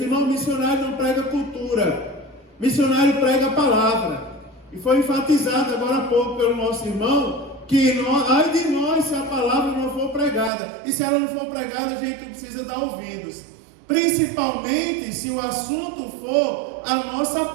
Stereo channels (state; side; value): drops out; left; at 10.5 s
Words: irmão, missionário não prega cultura, missionário prega a palavra. E foi enfatizado agora há pouco pelo nosso irmão, que ai de nós se a palavra não for pregada. E se ela não for pregada, a gente precisa dar ouvidos. Principalmente se o assunto for a nossa